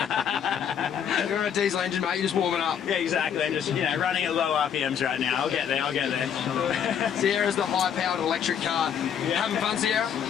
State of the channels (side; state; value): right; quieter; 8.3 dB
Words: You're a diesel engine, mate. You're just warming up. Yeah, exactly. I'm just, running at low RPMs right now. I'll get there. Sierra's the high-powered electric car. Having fun, Sierra?